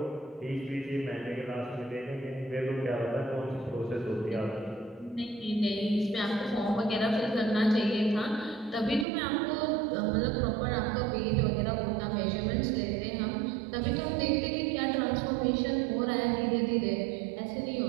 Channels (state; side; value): drops out; left; at 9.1 s